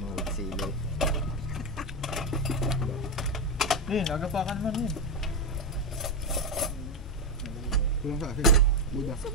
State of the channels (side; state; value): both; normal; correlation 0.08